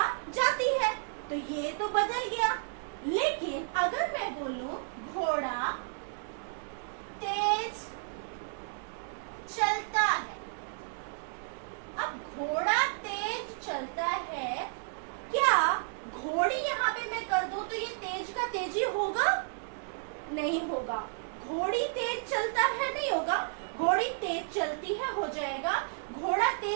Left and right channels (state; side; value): silent; left; digital silence